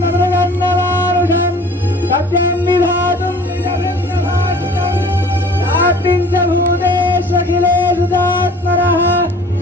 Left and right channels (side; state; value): both; normal; correlation 0.48